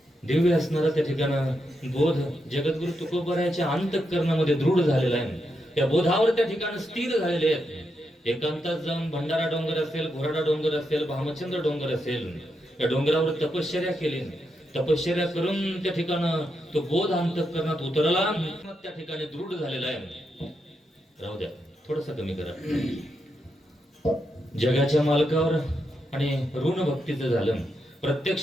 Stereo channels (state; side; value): normal; both; correlation 0.83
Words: दिव्य असणारा त्या ठिकाणं बोध जगद्गुरु तुकोबरायाच्या अंतःकरणामध्ये दृढ झालेला आहे. त्या बोधावर त्या ठिकाणी स्थिर झालेले आहेत. एकांतात जाऊन भंडारा डोंगर असेल, घोराडा डोंगर असेल, भामचंद्र डोंगर असेल, या डोंगरावर तपश्चर्या केली. तपश्चर्या करून त्या ठिकाणं तो बोध अंतःकरणात उतरला, त्या ठिकाणी दृढ झालेला आहे. राहू द्या, थोडस कमी करा. जगाच्या मालकावर आणि ऋण भक्तीचं झालं.